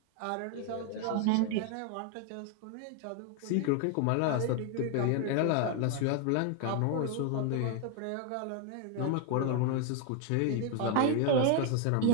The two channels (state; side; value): different; both; correlation 0.01